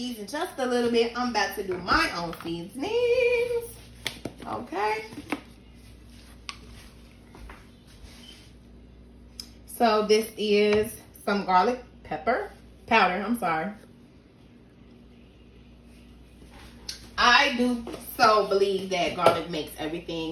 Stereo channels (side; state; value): both; identical; correlation 1.00